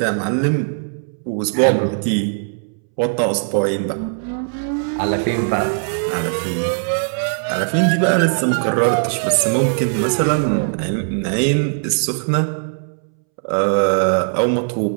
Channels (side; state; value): left; silent; 66 dB below the other